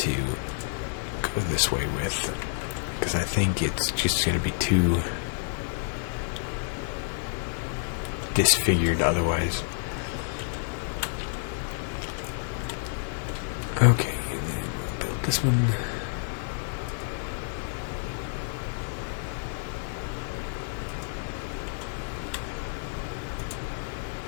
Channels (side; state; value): right; silent; 56 dB below the other